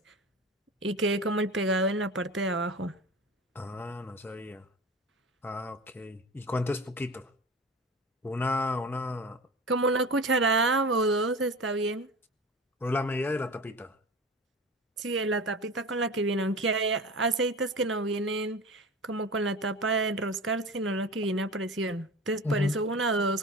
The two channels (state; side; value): normal; both; correlation 0.32